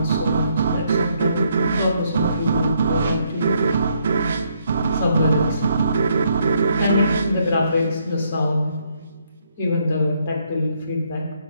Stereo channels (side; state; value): both; inverted; correlation -0.72